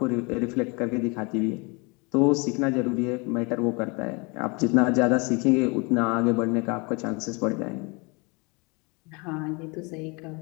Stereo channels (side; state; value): right; quieter; 29.5 dB